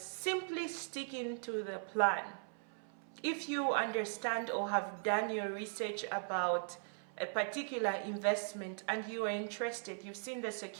sticking to the plan. If you understand or have done your research about a particular investment and you are interested, you've seen the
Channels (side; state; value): left; silent; 52 dB below the other